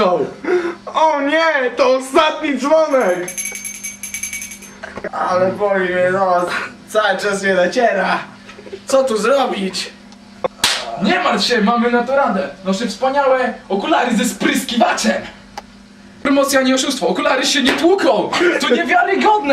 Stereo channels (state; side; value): identical; both; correlation 1.00